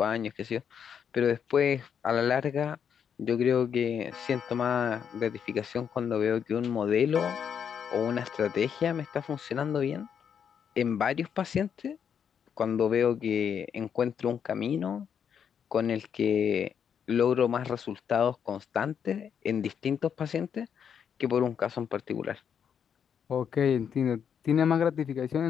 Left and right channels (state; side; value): quieter; right; 7.8 dB